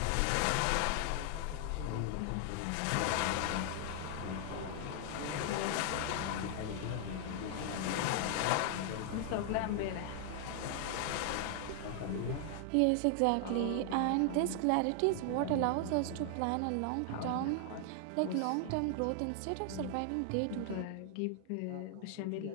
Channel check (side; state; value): both; different; correlation 0.00